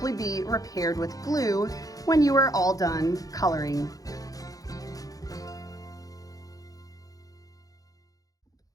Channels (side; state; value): right; late; 0.17 ms